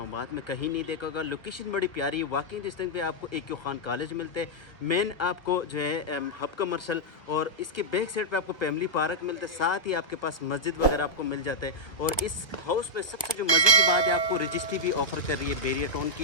में कहीं नहीं देखा होगा। लोकेशन बड़ी प्यारी है। वॉकिंग डिस्टेंस पे आपको AQ खान कॉलेज मिलते हैं, मेन आपको जो है हब कमर्शल, और इसके बैक साइड पे आपको फैमिली पार्क मिलता है। साथ ही आपके पास मस्जिद वगैरह आपको मिल जाते हैं। और इस हाउस में सबसे जो मज़े की बात है, आपको रजिस्ट्री भी ऑफर कर रही है, बेरिया टाउन की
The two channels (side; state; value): right; late; 1.2 ms